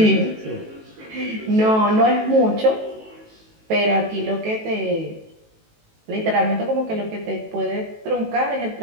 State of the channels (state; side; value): late; left; 18 ms